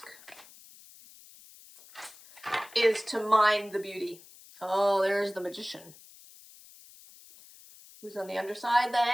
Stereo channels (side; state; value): left; noise; hiss, 22 dB below the sound